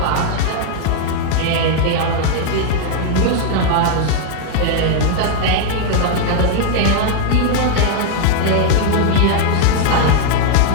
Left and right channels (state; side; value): different; both; correlation 0.00